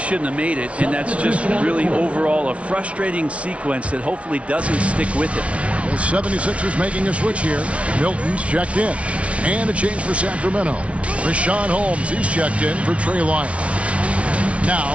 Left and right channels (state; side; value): late; left; 0.062 ms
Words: have made it, and that's just really overall a frustrating sequence that hopefully doesn't stick with him. The 76ers making a switch here. Milton's checked in. And a change for Sacramento. Rashawn Holmes, he's checked in for Trey Lyons. Now,